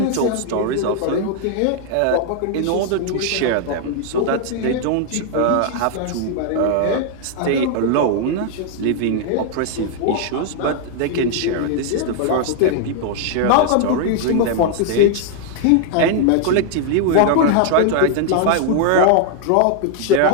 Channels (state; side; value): different; both; correlation 0.00